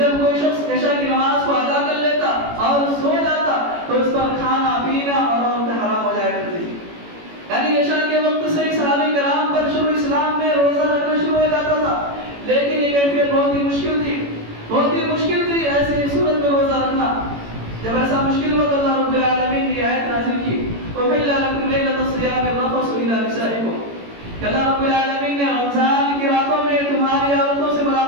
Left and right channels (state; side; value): late; left; 18 ms